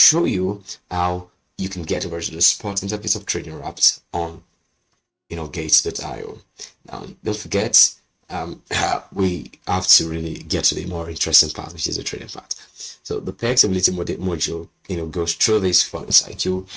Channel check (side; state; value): both; identical; correlation 1.00